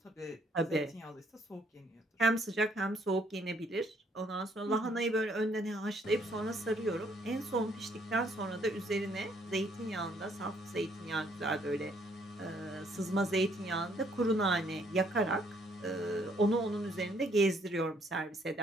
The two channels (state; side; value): normal; both; correlation 0.67